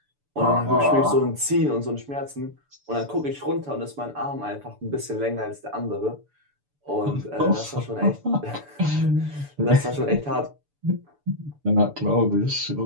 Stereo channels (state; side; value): late; left; 6.9 ms